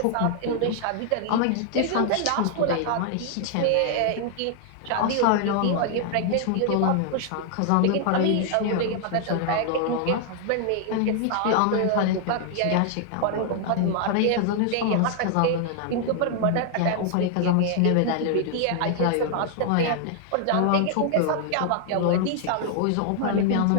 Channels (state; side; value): different; both; correlation 0.00